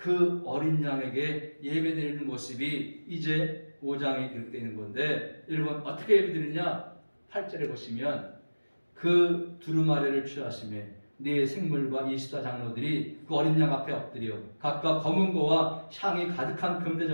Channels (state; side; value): inverted; both; correlation -1.00